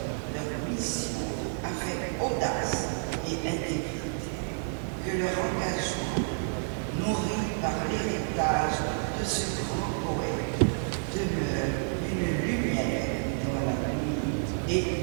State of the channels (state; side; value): silent; left; digital silence